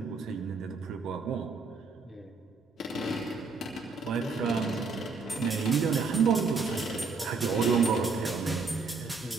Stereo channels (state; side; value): quieter; left; 4.4 dB